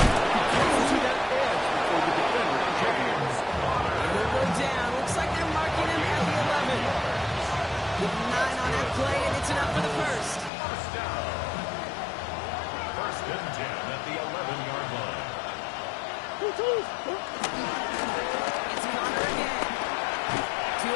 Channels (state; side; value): drops out; right; at 10.5 s